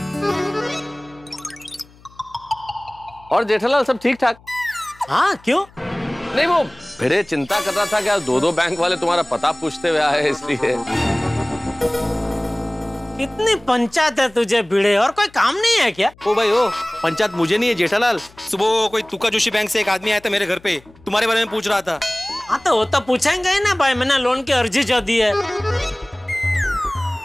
और जेठालाल सब ठीक ठाक? हाँ क्यों? नहीं वो भिड़े चिंता कर रहा था कि दो बैंक वाले तुम्हारा पता पूछते हुए आए, इसलिए। कितनी पंचायत है तुझे भिड़े, और कोई काम नहीं है क्या? ओ भाई ओ, पंचायत मुझे नहीं है जेठालाल। सुबह कोई तुका जोशी बैंक से एक आदमी आया था मेरे घर पे, तुम्हारे बारे में पूछ रहा था। हाँ तो वो तो पूछेंगे ही ना भाई, मैंने लोन की अर्जी जो दी है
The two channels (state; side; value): noise; left; hum, 26 dB below the sound